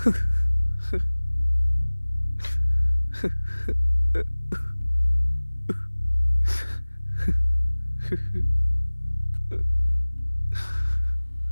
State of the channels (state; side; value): inverted; both; correlation -1.00